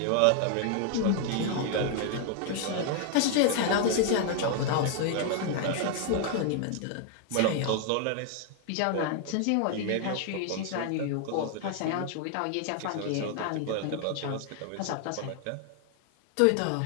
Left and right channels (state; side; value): different; both; correlation 0.00